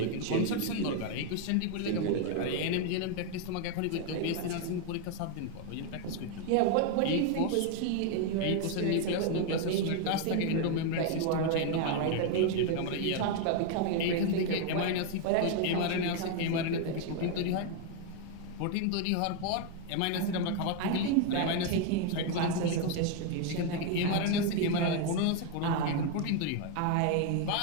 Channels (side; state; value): both; different; correlation 0.01